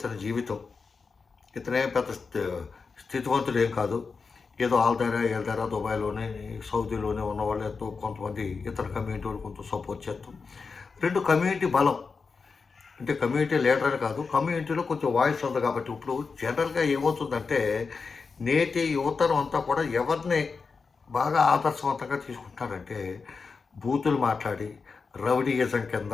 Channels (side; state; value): right; quieter; 4.9 dB